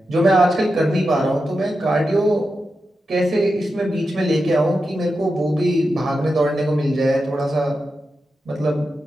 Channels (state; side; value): normal; both; correlation 0.89